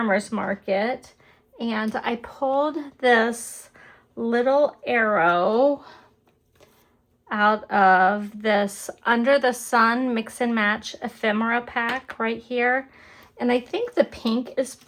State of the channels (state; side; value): identical; both; correlation 1.00